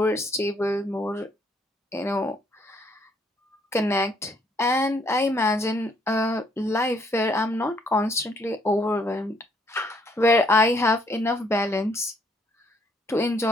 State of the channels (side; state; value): both; normal; correlation 0.68